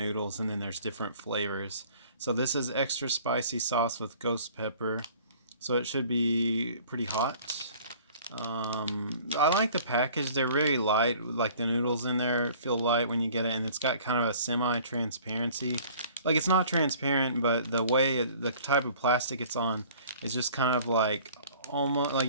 and then there's different flavors. So this is extra spicy sauce with ghost pepper, so it should be pretty hot. I like the package. They're really light. Like the noodles in there feel light when you get it, and it's got kind of a semi-transparency. Like it's not transparent, but the type of plastic it's on is just kind of like almost like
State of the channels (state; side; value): inverted; both; correlation -0.51